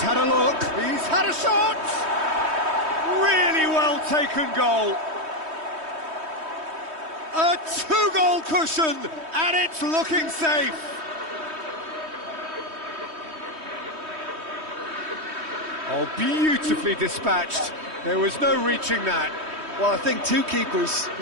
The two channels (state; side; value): late; left; 3.2 ms